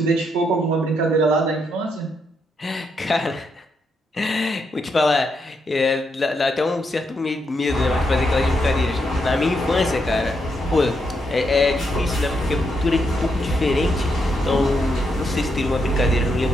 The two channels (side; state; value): both; normal; correlation 0.79